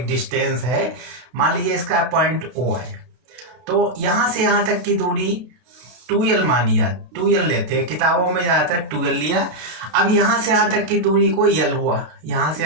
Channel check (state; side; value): late; left; 33 ms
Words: डिस्टेंस है। मान लीजिए इसका पॉइंट O है, तो यहाँ से यहाँ तक की दूरी 2L मानिए, 2L लेते हैं, किताबों में ज़्यादातर 2L लिया। अब यहाँ से यहाँ तक की दूरी को L हुआ, यहाँ से